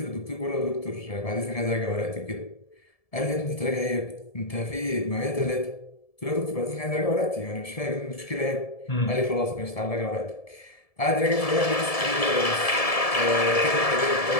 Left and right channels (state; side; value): late; right; 1.7 ms